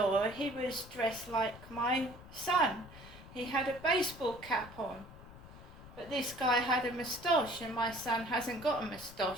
he was dressed like my son. He had a baseball cap on, but this guy had a moustache, and my son hasn't got a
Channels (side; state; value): left; noise; rumble, 17 dB below the sound